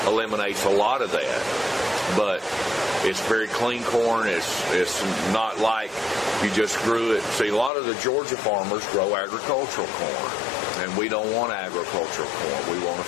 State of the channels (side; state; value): right; drops out; at 7.7 s